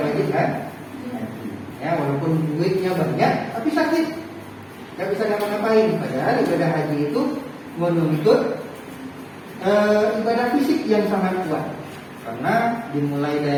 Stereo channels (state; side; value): identical; both; correlation 1.00